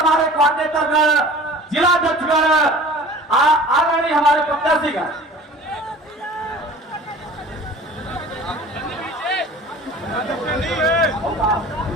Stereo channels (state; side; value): normal; both; correlation 0.43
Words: कोऑर्डिनेटर जिला अध्यक्षगण आदरणीय हमारे प्रत्याशीगण,